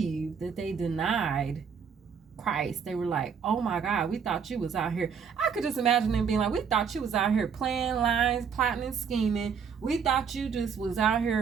that they denied Christ. They were like, oh my God, we thought you was out here. I could just imagine them being like, we thought you was out here playing lines, plotting and scheming. We thought you just was out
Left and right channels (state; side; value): quieter; left; 6.6 dB